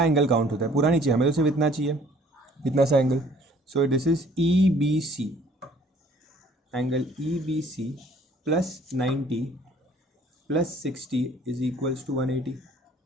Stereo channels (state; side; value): normal; both; correlation 0.57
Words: एंगल काउंट होता है. पूरा नहीं चाहिए हमें, तो सिर्फ इतना चाहिए, इतना सा angle. So this is EBC, angle EBC plus 90 plus 60 is equals to 180.